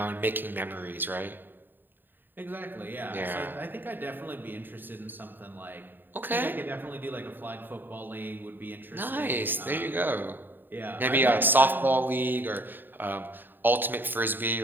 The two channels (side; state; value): left; late; 0.093 ms